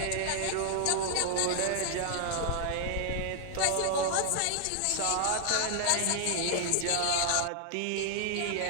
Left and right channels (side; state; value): both; different; correlation 0.00